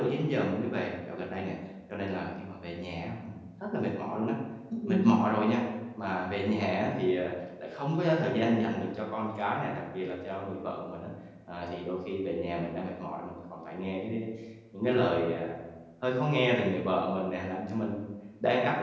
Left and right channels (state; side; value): identical; both; correlation 1.00